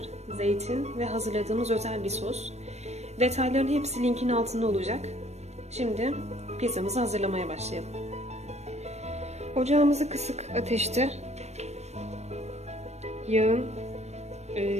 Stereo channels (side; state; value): left; late; 0.32 ms